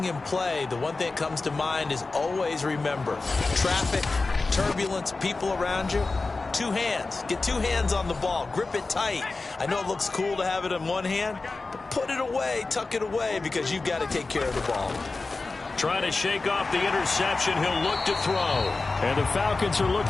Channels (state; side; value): quieter; right; 3.7 dB